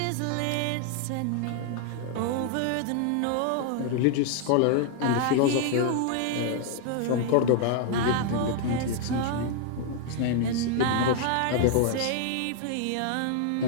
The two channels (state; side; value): different; both; correlation 0.00